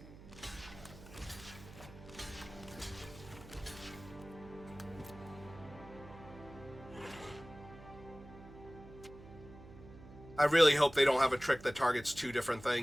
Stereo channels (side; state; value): right; noise; hum, 17 dB below the sound